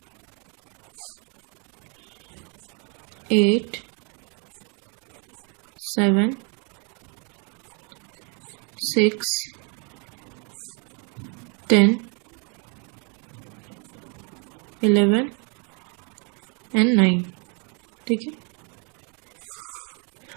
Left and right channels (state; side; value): quieter; left; 35.8 dB